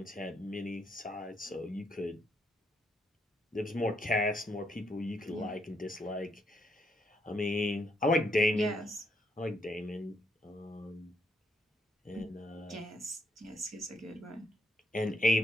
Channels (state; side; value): normal; both; correlation 0.75